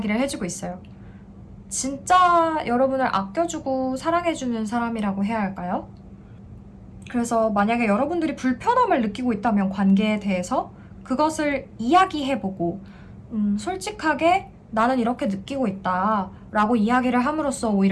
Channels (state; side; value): identical; both; correlation 1.00